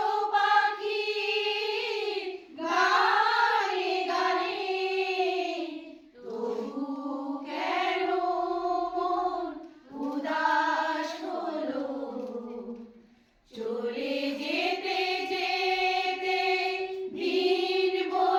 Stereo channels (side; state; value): both; identical; correlation 1.00